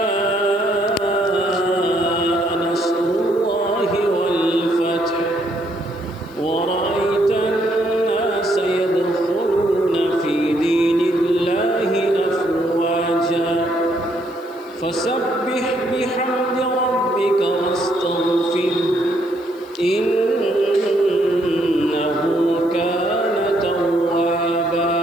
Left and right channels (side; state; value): right; noise; hiss, 29 dB below the sound